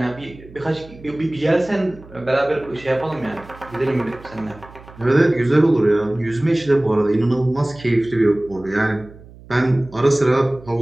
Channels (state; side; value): noise; right; hum, 21 dB below the sound